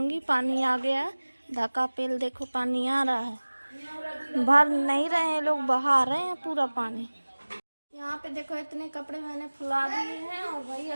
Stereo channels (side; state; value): both; inverted; correlation -1.00